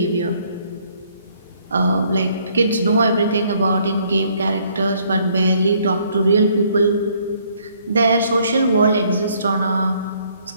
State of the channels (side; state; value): both; inverted; correlation -0.65